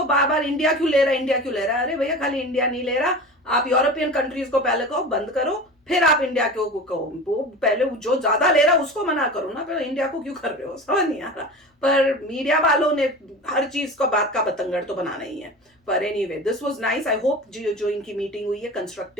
बार बार इंडिया क्यों ले रहा है, इंडिया क्यों ले रहा है। अरे भैया खाली इंडिया नहीं ले रहा, आप यूरोपियन कंट्रीज को पहले कहो बंद करो, फिर आप इंडिया को कहो। वो पहले जो ज्यादा ले रहा है उसको मना करो ना, फिर इंडिया को क्यों कर रहे हो, समझ नहीं आ रहा। पर मीडिया वालों ने हर चीज को बात का बतंगड़ तो बनाना ही है। पर anyway this was nice. I hope जो इनकी मीटिंग हुई है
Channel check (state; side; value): normal; both; correlation 0.32